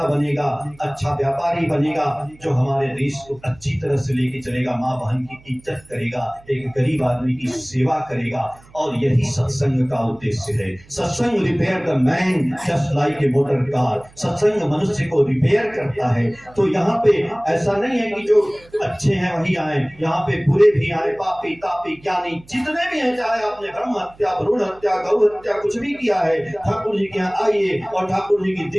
बनेगा, अच्छा व्यापारी बनेगा, जो हमारे देश को अच्छी तरह से लेके चलेगा, माँ बहन की इज्जत करेगा, एक गरीब आदमी की सेवा करेगा। और यही सत्संग का उद्देश्य है। सत्संग repair the man just like a motor car. सत्संग मनुष्य को रिपेयर करता है। तो यहाँ पे ऐसा नहीं है कि जो अच्छे हैं वही आए, यहाँ पे बुरे भी आए, पापी तापी ज्ञानी जितने भी हैं, चाहे आपने ब्रह्म हत्या, भ्रूण हत्या, गौ हत्या कुछ भी किया है, ठाकुर जी के यहाँ आइए और ठाकुर जी की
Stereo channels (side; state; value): right; noise; hum, 26 dB below the sound